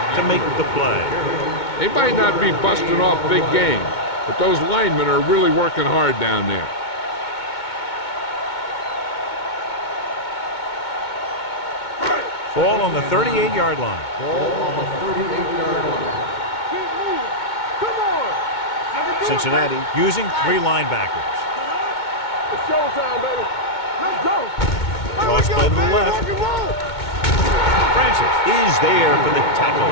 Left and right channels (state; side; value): late; right; 2.2 ms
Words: to make the play. They might not be busting off big game, but those linemen are really working hard down there. Ball on the 38-yard line. Ball on the 38-yard line. Keep moving. Come on. Cincinnati using 3 linebackers. It's showtime, baby. Let's go. Cross play to the left. Francis is there for the tackle